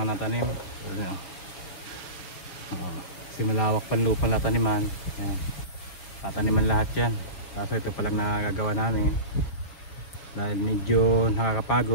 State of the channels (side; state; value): right; late; 4.9 ms